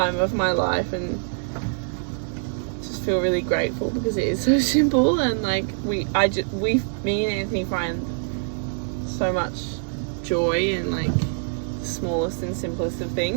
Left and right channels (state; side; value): silent; left; 62 dB below the other